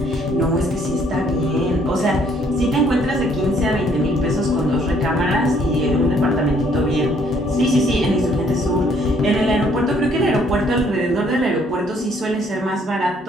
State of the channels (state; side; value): normal; both; correlation 0.64